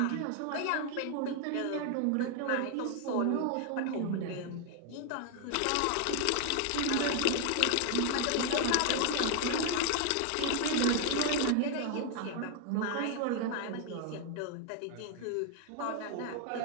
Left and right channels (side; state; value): both; different; correlation 0.00